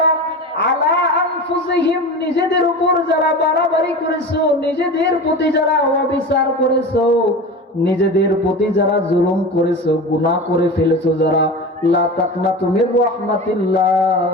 আলা আনফুসিহিম, নিজেদের উপর যারা বাড়াবাড়ি করেছো, নিজেদের প্রতি যারা অবিচার করেছো, নিজেদের প্রতি যারা জুলুম করেছো, গুনাহ করে ফেলেছো যারা, লা তাকনাতু মির রাহমাতিল্লাহ,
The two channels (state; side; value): normal; both; correlation 0.30